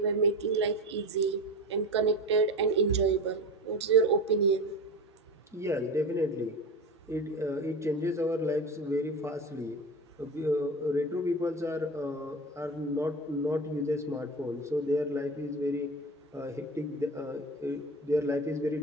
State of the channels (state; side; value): normal; both; correlation 0.29